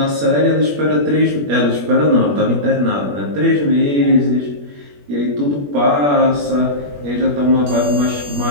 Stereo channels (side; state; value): left; late; 21 ms